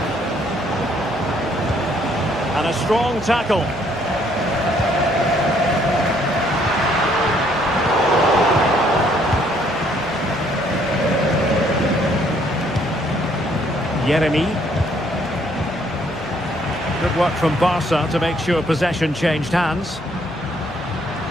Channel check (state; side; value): noise; left; hum, 22 dB below the sound